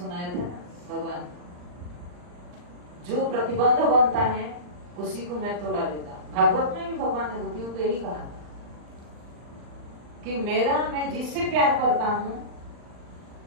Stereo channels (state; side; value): late; left; 39 ms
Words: थे ना, भगवान जो प्रतिबंध बनता है उसी को मैं तोड़ा देता। भागवत में भी भगवान ने गोपियों को यही कहा था कि मैं जिससे प्यार करता हूं,